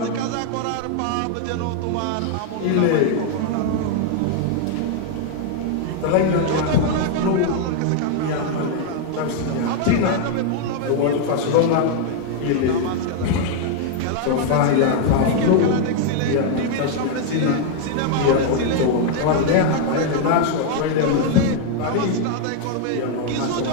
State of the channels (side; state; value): both; different; correlation 0.00